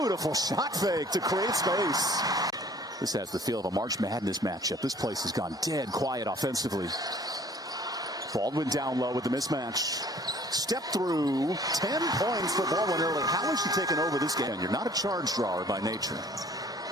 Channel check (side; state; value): both; normal; correlation 0.54